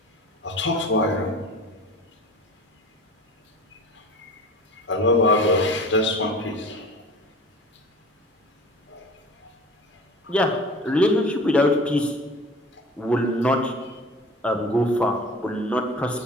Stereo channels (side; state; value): both; normal; correlation 0.41